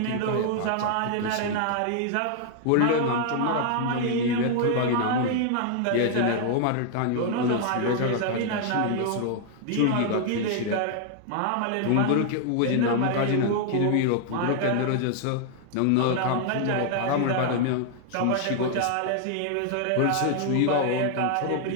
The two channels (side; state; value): both; different; correlation 0.00